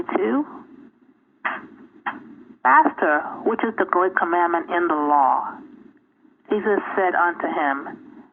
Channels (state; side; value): identical; both; correlation 1.00